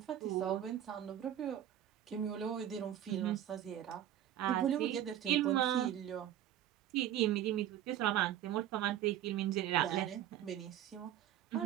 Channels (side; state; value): left; quieter; 11.4 dB